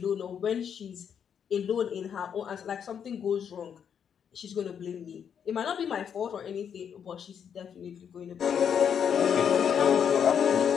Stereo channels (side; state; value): right; quieter; 7.9 dB